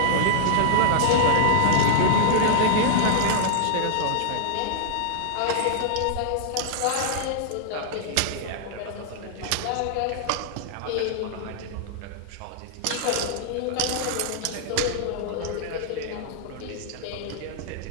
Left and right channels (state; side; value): different; both; correlation -0.01